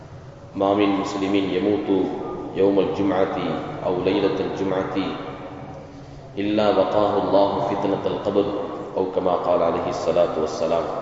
ما من مسلم يموت يوم الجمعة أو ليلة الجمعة إلا وقاه الله فتنة القبر أو كما قال عليه الصلاة والسلام.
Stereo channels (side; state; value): both; identical; correlation 1.00